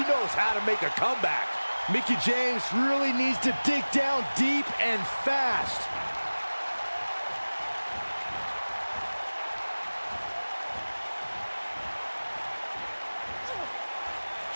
knows how to make a comeback. Mickie James really needs to dig down deep and fast.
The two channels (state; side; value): inverted; both; correlation -1.00